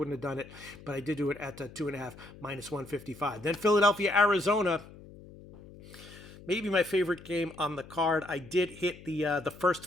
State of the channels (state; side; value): noise; left; hum, 19 dB below the sound